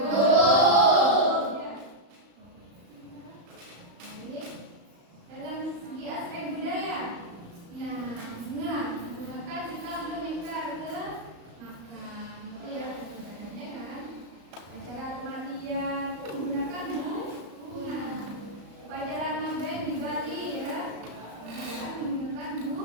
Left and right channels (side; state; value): left; late; 35 ms